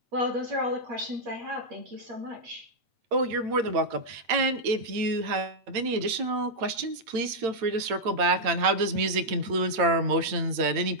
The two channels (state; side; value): late; left; 8.9 ms